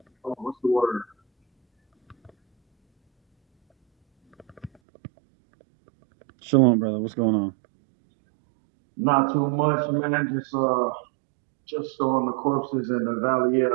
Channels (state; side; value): drops out; left; at 4.7 s